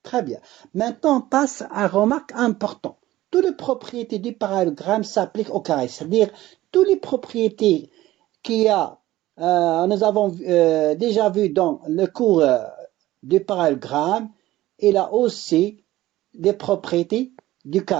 Très bien. Maintenant, on passe à une remarque importante. Toutes les propriétés du parallélogramme s'appliquent au carré, c'est-à-dire toutes les propriétés nous avons déjà vu dans le cours du parallélogramme, il a aussi des propriétés du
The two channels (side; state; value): left; quieter; 16.0 dB